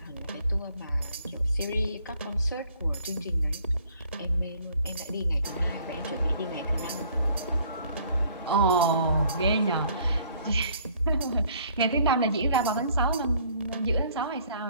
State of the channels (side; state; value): both; inverted; correlation -0.59